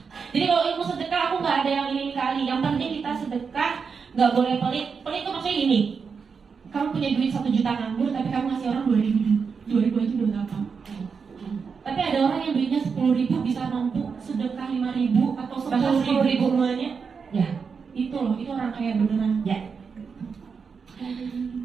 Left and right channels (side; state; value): left; quieter; 5.7 dB